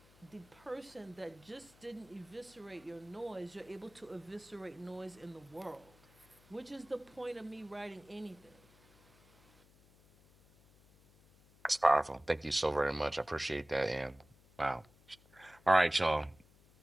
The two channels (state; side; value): noise; left; hum, 27 dB below the sound